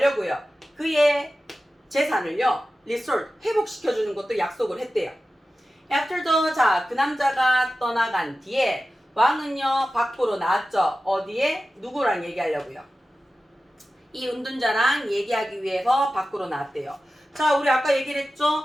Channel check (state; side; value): normal; both; correlation 0.94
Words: 그의 재산을요 restore 회복시켜주는 것도 약속을 했대요. After the 자, 그 남자가 떠나간 뒤에 왕은요 밖으로 나왔죠. 어디에? 누구랑 얘기하려고요? 이 은둔자랑 얘기하기 위해서 밖으로 나왔대요. 자, 우리 아까 얘기를